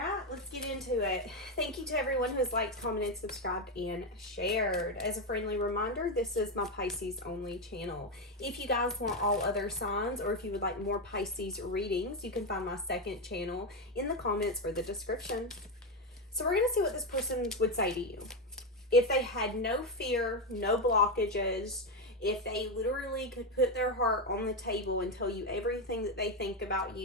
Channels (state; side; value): normal; both; correlation 0.09